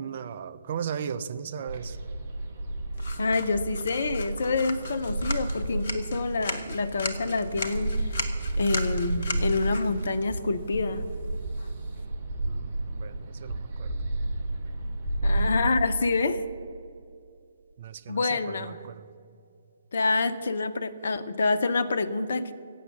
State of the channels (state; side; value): inverted; both; correlation -0.85